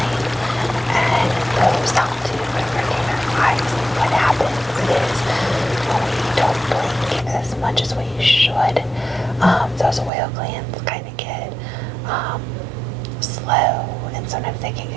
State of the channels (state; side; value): drops out; left; at 10.1 s